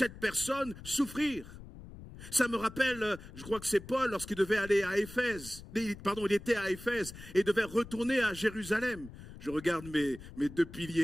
personne souffrir. Ça me rappelle, je crois que c'est Paul, lorsqu'il devait aller à Éphèse, il était à Éphèse et devait retourner à Jérusalem. Je regarde mes 2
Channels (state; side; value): noise; left; rumble, 15 dB below the sound